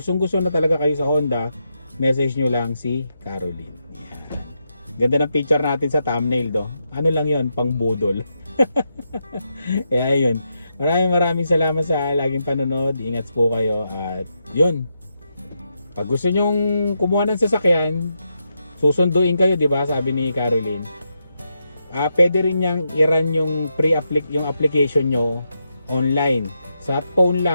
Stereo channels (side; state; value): both; inverted; correlation -0.83